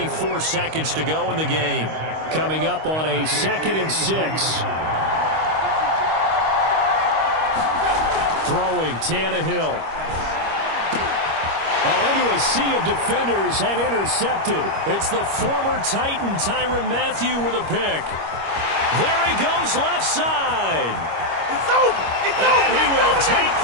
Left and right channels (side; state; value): left; late; 25 ms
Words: seconds to go in the game. Coming up on a 2nd and 6. Throwing Tannehill. Oh, into a sea of defenders and intercepted. It's the former Titan Tyrann Mathieu with a pick. There he goes left side. It's over. It's over. And he will take